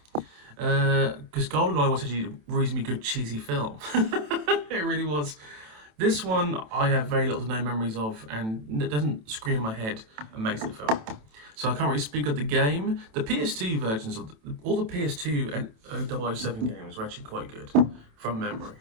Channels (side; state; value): left; late; 27 ms